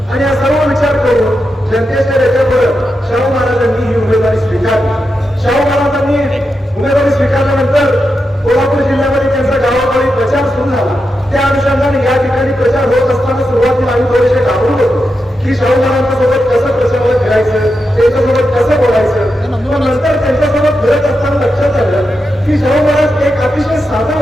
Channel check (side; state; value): both; normal; correlation 0.87